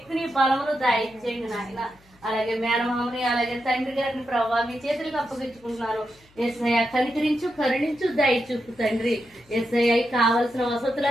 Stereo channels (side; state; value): left; noise; hum, 29 dB below the sound